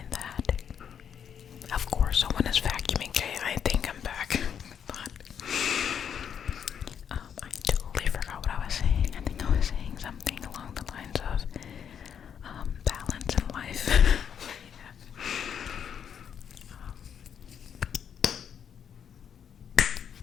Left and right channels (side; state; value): right; quieter; 8.1 dB